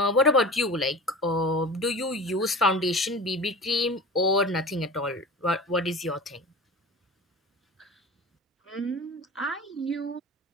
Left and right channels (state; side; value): normal; both; correlation 0.35